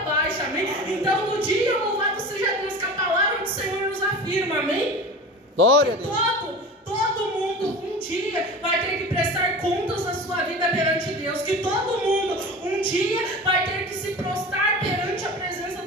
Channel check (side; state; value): both; normal; correlation 0.34